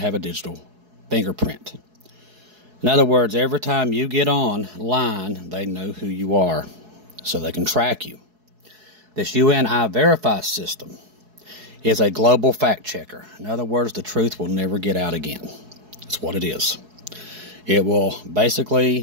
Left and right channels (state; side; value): late; left; 4.7 ms